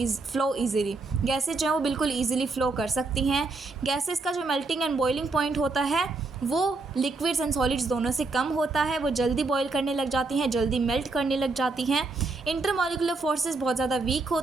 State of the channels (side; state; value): left; quieter; 3.6 dB